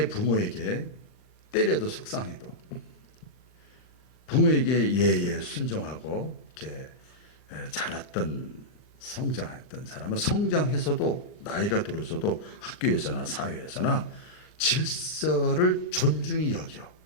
부모에게 때려도 속상해도 부모에게 예예 순종하고 이렇게 자랐던 성장했던 사람은 성장해서도 나이가 들어서도 학교에서나 사회에서나 질서를 존중히 여겨.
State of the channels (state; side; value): late; right; 39 ms